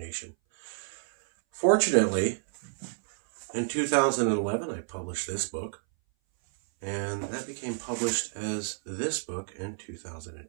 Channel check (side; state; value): left; silent; 58 dB below the other